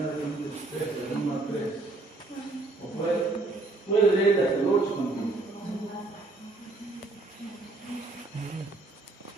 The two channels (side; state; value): left; quieter; 3.2 dB